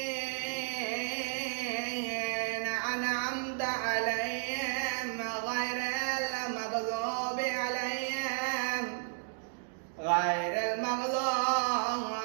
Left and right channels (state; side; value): silent; left; digital silence